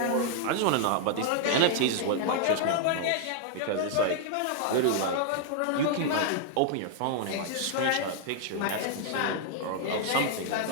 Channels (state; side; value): different; both; correlation 0.00